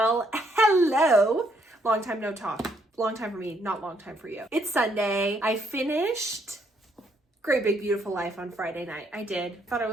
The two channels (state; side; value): normal; both; correlation 0.71